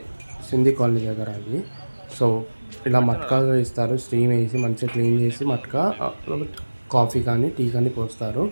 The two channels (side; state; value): both; inverted; correlation -1.00